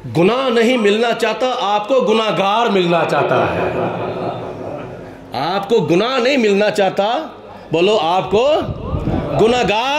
گناہ نہیں ملنا چاہتا، آپ کو گناہگار ملنا چاہتا ہے۔ آپ کو گناہ نہیں ملنا چاہتا، بولو آپ کو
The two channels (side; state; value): both; identical; correlation 1.00